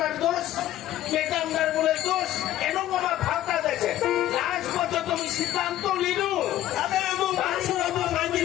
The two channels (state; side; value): quieter; right; 13.5 dB